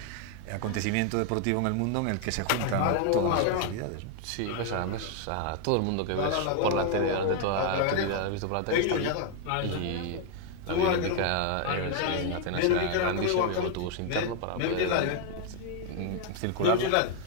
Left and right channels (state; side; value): different; both; correlation 0.00